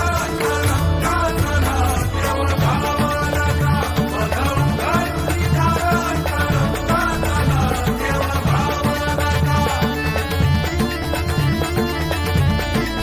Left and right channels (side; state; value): both; identical; correlation 1.00